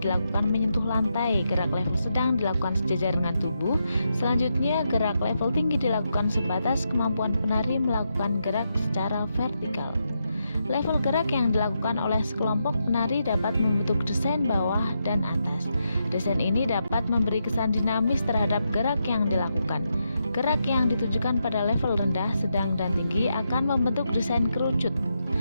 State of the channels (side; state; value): both; inverted; correlation -0.83